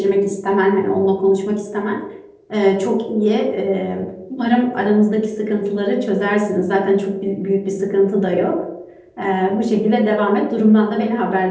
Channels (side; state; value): both; identical; correlation 1.00